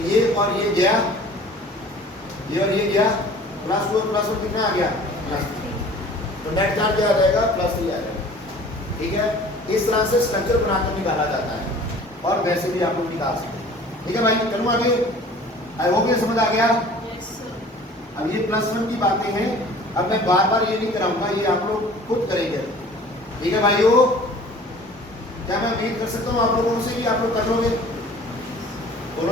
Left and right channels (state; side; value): normal; both; correlation 0.47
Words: ये और ये गया, ये और ये गया, +2 और +1 कितना आ गया? +3। तो नेट चार्ज क्या आ जाएगा? +3 आ जाएगा। ठीक है, इस तरह से स्ट्रक्चर बनाकर निकाला जाता है, और वैसे भी आप लोग निकाल सकते हैं। ठीक है भाई, चलो आगे। आई होप ये समझ आ गया। अब ये +1 की बातें हैं, अब मैं बार बार ये नहीं कराऊंगा, ये आप लोग खुद करेंगे। ठीक है भाइयों, क्या मैं उम्मीद कर सकता हूँ आप लोगों से कि आप लोग कर लोगे?